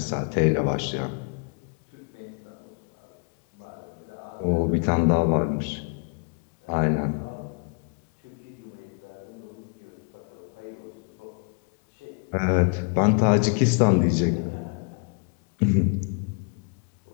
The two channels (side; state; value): right; quieter; 39.8 dB